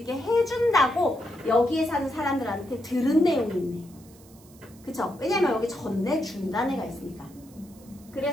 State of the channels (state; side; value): noise; right; hiss, 25 dB below the sound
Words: 해준다고 여기에 사는 사람들한테 들은 내용이 있네. 그쵸? 왜냐면 여기 전내준다는 애가 있으니까.